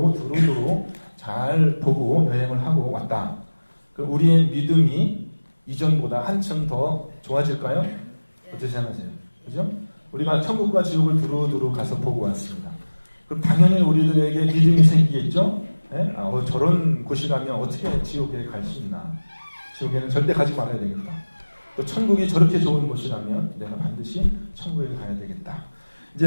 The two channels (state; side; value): inverted; both; correlation -1.00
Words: 두루두루 잘 보고 여행을 하고 왔다. 그럼 우리의 믿음이 이전보다 한층 더 좋아질까요? 어떻게 생각하세요? 그죠? 우리가 천국과 지옥을 두루두루 가서 보고 왔습니다. 그럼 당연히 우리들에게 믿음이 생기겠죠? 네? 저런 곳이라면 어떻게 지옥에 갈 수 있나? 지옥에는 절대 가지 말아야 되겠다. 또 천국이 저렇게 좋은 곳이라면 내가 반드시 천국에 가야 되겠다.